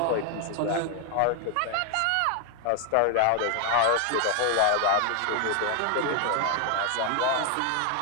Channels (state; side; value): different; both; correlation 0.00